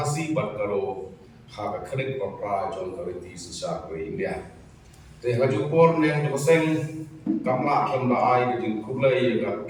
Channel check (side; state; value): both; identical; correlation 1.00